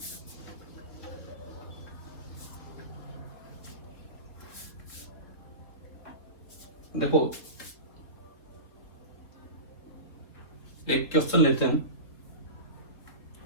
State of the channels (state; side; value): late; right; 3.7 ms